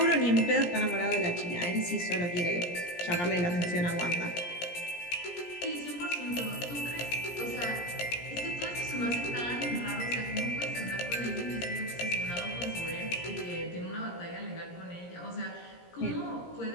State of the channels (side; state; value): right; late; 17 ms